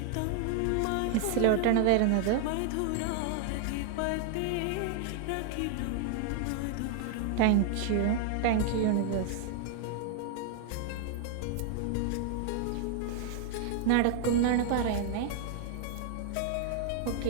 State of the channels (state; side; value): different; both; correlation 0.00